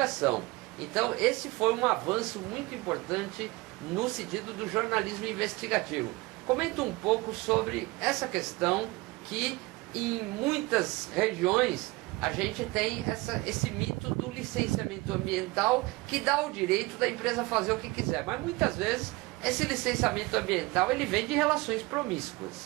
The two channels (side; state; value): left; quieter; 22.4 dB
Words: Então esse foi um avanço muito importante no sentido do jornalismo investigativo. Comenta um pouco sobre essa questão que em muitas regiões a gente tem esse mito do licenciamento ambiental que dá o direito da empresa fazer o que quiser, mas muitas vezes esse licenciamento ambiental ele vem de relações